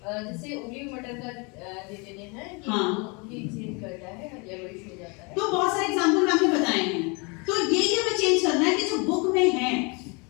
जैसे उबली मटर का दे देते हैं कि हाँ। ये चेंज करता है, येलोइश हो जाता है। तो बहुत सारे एग्जांपल मैंने बताए हैं। तो यही हमें चेंज करना है कि जो बुक में है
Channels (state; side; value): quieter; right; 30.7 dB